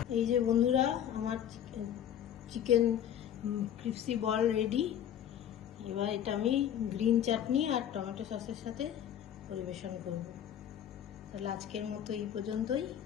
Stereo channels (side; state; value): right; quieter; 10.0 dB